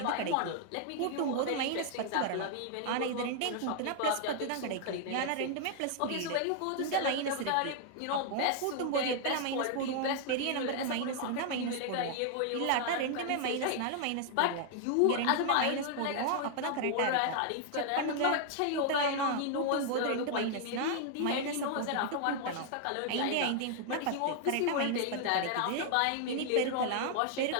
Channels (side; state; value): both; different; correlation 0.00